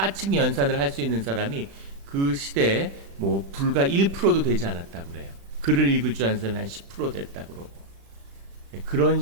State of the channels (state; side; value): late; left; 36 ms